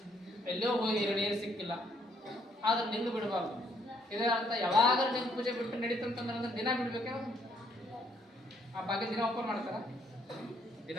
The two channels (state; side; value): normal; both; correlation 0.68